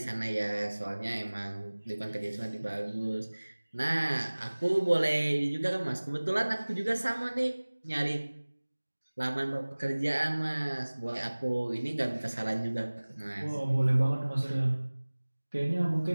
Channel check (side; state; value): both; inverted; correlation -1.00